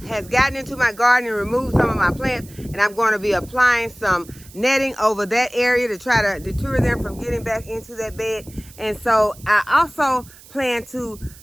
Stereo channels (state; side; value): noise; right; hiss, 22 dB below the sound